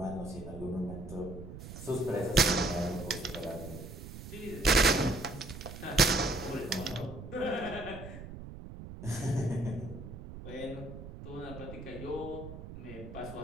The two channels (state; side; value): noise; right; rumble, 11 dB below the sound